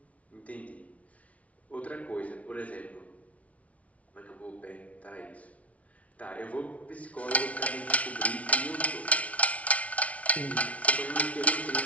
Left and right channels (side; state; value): right; late; 0.066 ms